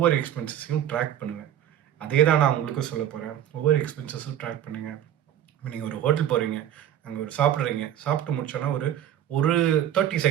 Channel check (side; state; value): left; quieter; 10.7 dB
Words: எக்ஸ்பென்சஸையும் ட்ராக் பண்ணுவேன். அதே தான் நான் உங்களுக்கும் சொல்ல போகிறேன். ஒவ்வொரு எக்ஸ்பென்சஸும் ட்ராக் பண்ணுங்கள். இப்போ நீங்கள் ஒரு ஹோட்டல் போகிறீங்க, அங்கே ஒரு சாப்பிட்றீங்க, சாப்பிட்டு முடிச்சோன்னா ஒரு ஒரு 30